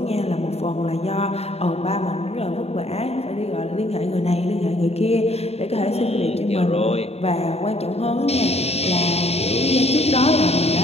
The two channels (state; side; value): late; right; 0.30 ms